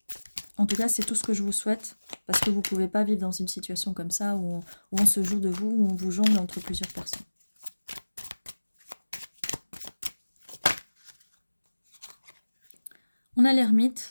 En tout cas, c'est tout ce que je vous souhaite, parce que vous ne pouvez pas vivre dans une situation comme ça, où on se joue de vous, où on vous jongle entre plusieurs personnes. On a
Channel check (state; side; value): inverted; both; correlation -1.00